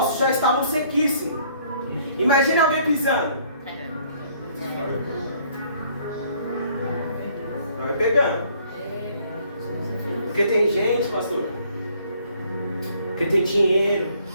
já estavam sequíssimos. Imagina alguém pisando. Não é pegando. Porque tem gente, pastor, porque tem dinheiro,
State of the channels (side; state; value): both; inverted; correlation -0.62